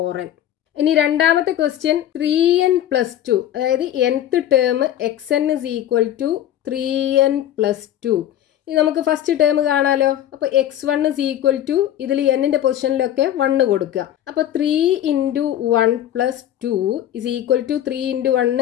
ഇനി രണ്ടാമത്തെ ക്വസ്റ്റ്യൻ 3n+2, അതായത് nth term xn is equal to 3n+2. ഇനി നമുക്ക് ഫസ്റ്റ് ടേം കാണാലോ. അപ്പോൾ x1 is equal to ഇതിൽ n-ന്റെ പൊസിഷനിലൊക്കെ 1 കൊടുക്കുക. അപ്പോൾ 3 × 1 + 2 is equal to 3 ×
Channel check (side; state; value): right; quieter; 11.5 dB